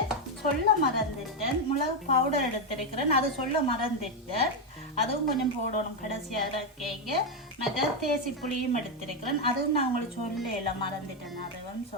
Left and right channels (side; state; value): both; normal; correlation 0.05